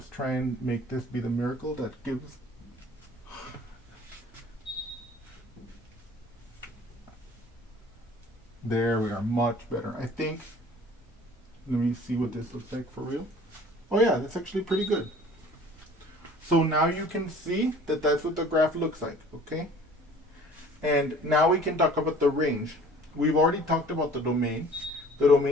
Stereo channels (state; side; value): normal; both; correlation 0.49